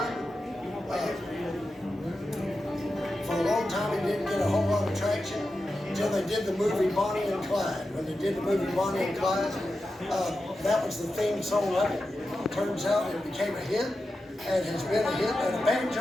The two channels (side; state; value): both; normal; correlation 0.91